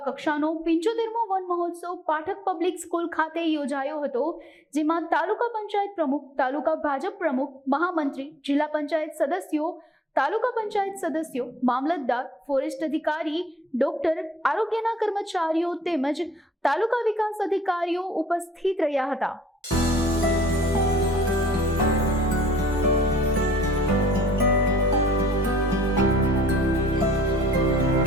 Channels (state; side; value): normal; both; correlation 0.61